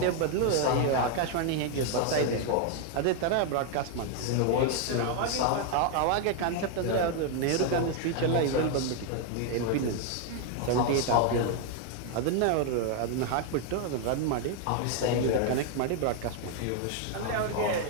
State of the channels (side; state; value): both; different; correlation 0.00